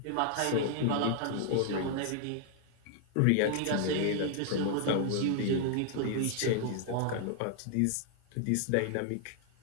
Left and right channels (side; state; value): both; different; correlation 0.00